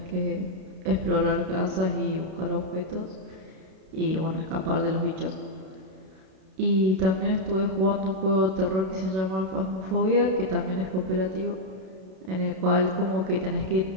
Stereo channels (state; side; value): late; left; 32 ms